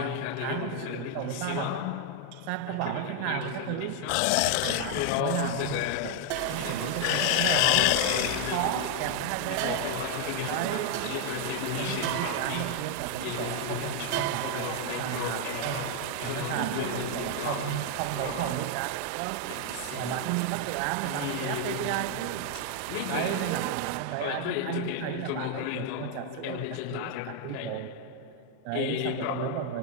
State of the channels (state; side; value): different; both; correlation 0.00